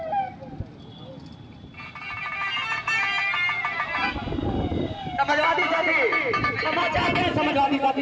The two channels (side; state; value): both; identical; correlation 1.00